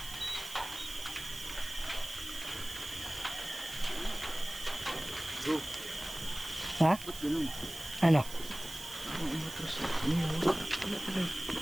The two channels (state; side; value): noise; right; hiss, 11 dB below the sound